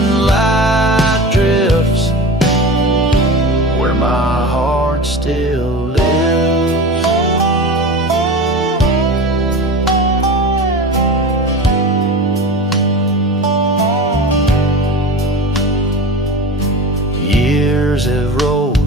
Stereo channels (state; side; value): normal; both; correlation 0.31